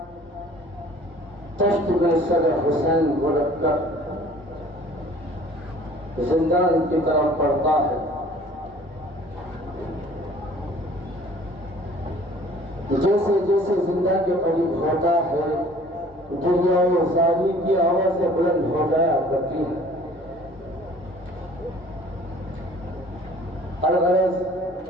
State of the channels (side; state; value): both; normal; correlation 0.51